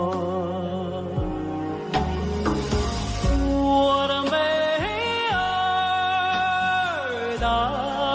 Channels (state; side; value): identical; both; correlation 1.00